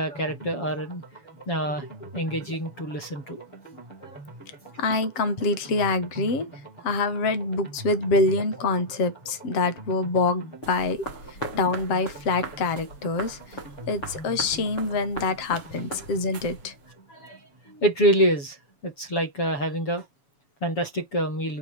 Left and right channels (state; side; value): late; right; 7.2 ms